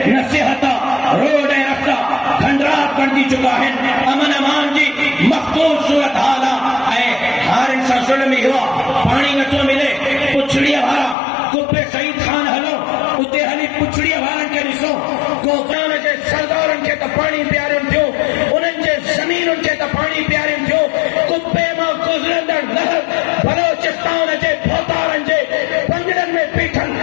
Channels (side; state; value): right; drops out; at 11.2 s